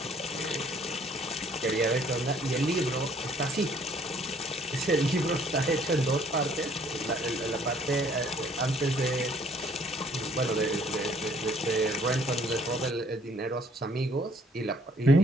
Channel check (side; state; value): both; normal; correlation 0.61